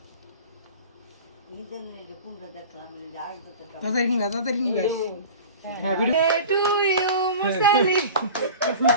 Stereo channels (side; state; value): both; inverted; correlation -0.37